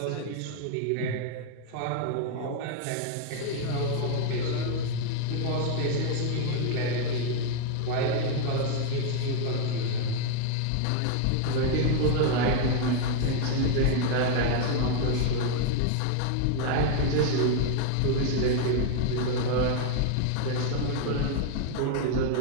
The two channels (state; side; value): different; both; correlation 0.01